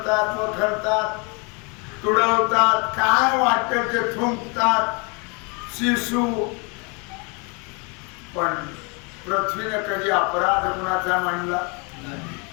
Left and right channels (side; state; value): right; quieter; 32.1 dB